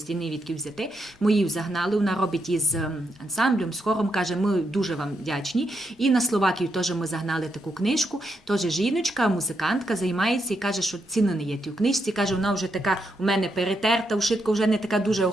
ні відки взяти. Ми її загнали, вона робить із ансамблем, з хором, каже, ми дуже вам вдячні. І на Словакію теж ми загнали таку книжку, теж жіночка, музикантка, займається і каже, що ціни не є тій книжці, каже, вона вже така у мене перетерта, ушитка вже не така дуже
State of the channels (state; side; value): normal; both; correlation 0.81